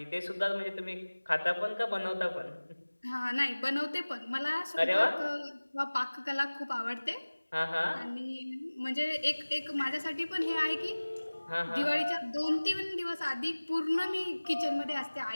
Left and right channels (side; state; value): both; inverted; correlation -1.00